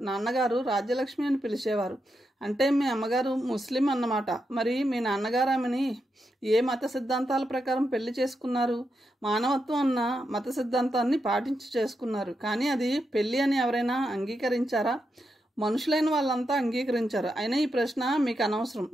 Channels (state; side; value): normal; both; correlation 0.85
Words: నాన్నగారు రాజ్యలక్ష్మి అని పిలిచేవారు. అంటే మీ అమ్మగారు ముస్లిం అన్నమాట. మరి మీ నాన్నగారు ఆమెని ఏ మత సిద్ధాంతాల ప్రకారం పెళ్లి చేసుకున్నారు? మానవత్వం అన్న మత సిద్ధాంతాన్ని పాటించి చేసుకున్నారు. కానీ అది పెళ్లి అని ఎవరైనా అంగీకరించారా? మనుషులైన వాళ్ళంతా అంగీకరించారు. అయినా ఈ ప్రశ్న మీకు అనవసరం.